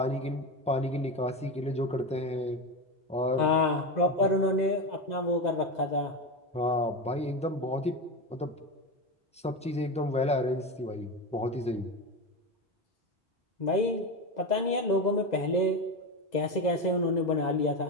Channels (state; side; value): normal; both; correlation 0.18